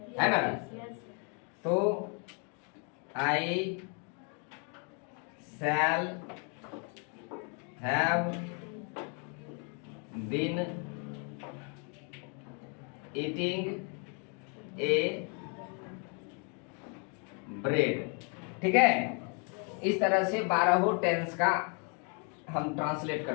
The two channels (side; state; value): right; quieter; 37.9 dB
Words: है ना। तो I shall have been eating a bread, ठीक है। इस तरह से 12 टेंस का हम ट्रांसलेट